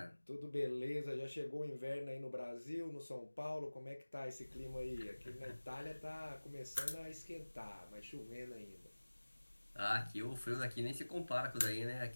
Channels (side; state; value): both; inverted; correlation -1.00